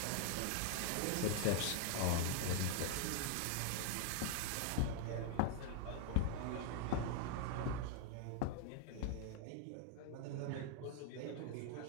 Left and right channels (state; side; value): different; both; correlation 0.00